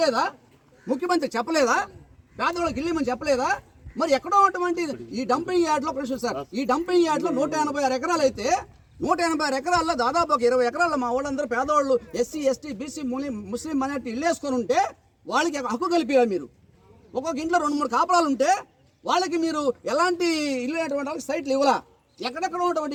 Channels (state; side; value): identical; both; correlation 1.00